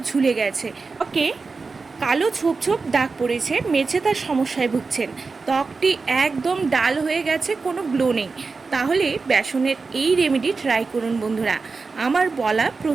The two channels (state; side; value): quieter; left; 4.3 dB